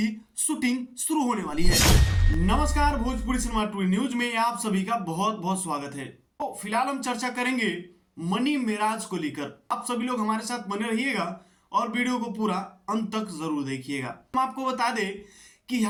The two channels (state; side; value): identical; both; correlation 1.00